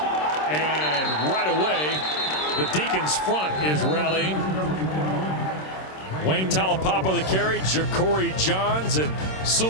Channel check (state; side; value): late; right; 26 ms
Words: And right away, the Deacons front is rallying. Wayne Taulapapa the carry, Ja'Cory Johns and